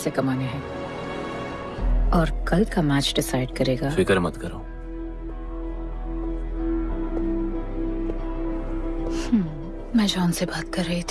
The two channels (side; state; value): both; identical; correlation 1.00